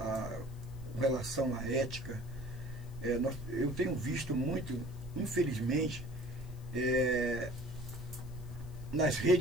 com relação à ética, eu tenho visto muito, infelizmente, nas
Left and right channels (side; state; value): left; noise; hiss, 26 dB below the sound